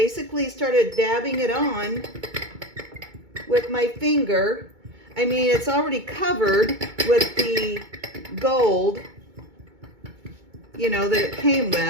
started dabbing it on with my finger. I mean, it's already covered with the gold, you know, that it came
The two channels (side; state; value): left; late; 2.2 ms